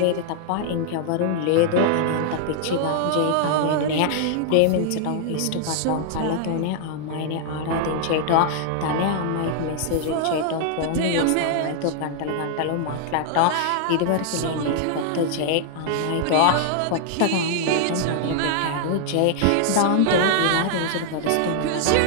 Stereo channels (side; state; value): both; different; correlation -0.01